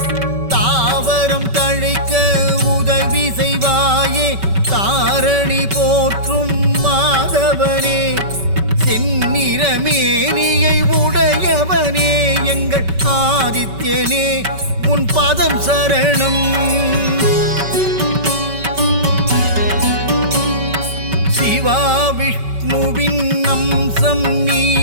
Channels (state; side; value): late; left; 5.2 ms